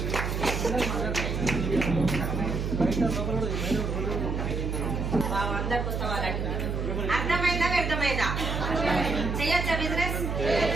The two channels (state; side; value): noise; right; hum, 2 dB below the sound